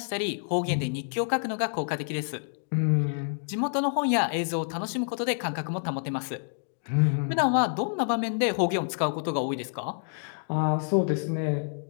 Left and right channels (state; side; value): silent; right; digital silence